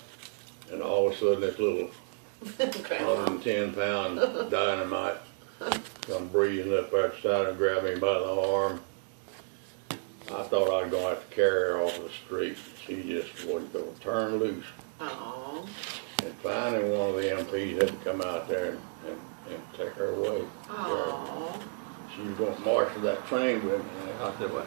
And all of a sudden this little 110-pound dynamite come breezing up out the side and grabbed me by the arm. I thought I was going to have to carry her off the street. She just wasn't going to turn loose. Aww. And finally one of the MPs had to come out there and take her away. Aww. She was going to march to that train with me. And I said, well,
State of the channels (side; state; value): left; silent; digital silence